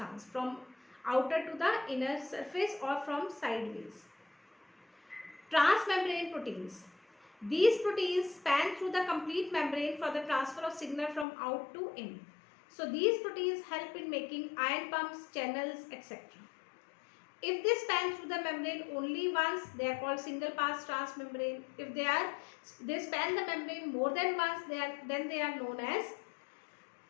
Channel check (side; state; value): right; drops out; at 11.2 s